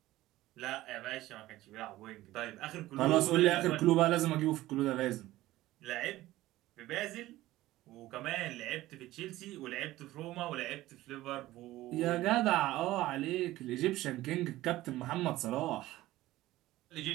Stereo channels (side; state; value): left; quieter; 16.5 dB